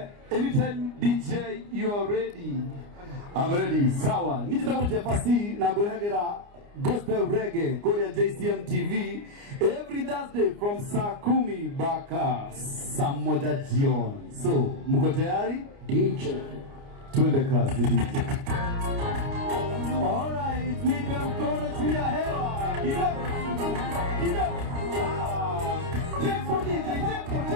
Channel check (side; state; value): left; late; 29 ms